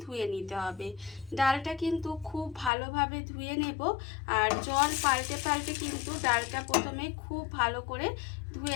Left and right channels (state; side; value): drops out; right; at 2.7 s